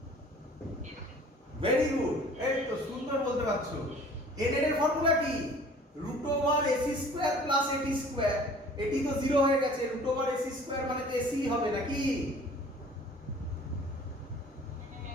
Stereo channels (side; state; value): both; normal; correlation 0.49